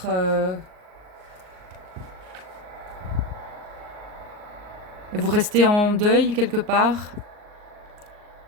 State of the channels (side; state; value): left; late; 38 ms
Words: vous restez en deuil quelque part.